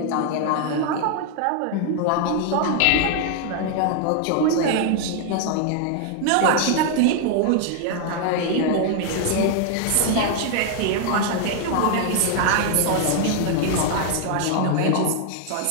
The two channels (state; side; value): different; both; correlation 0.00